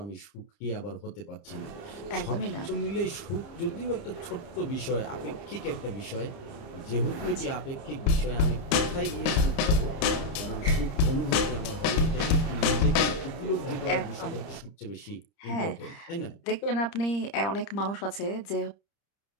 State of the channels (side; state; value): right; late; 30 ms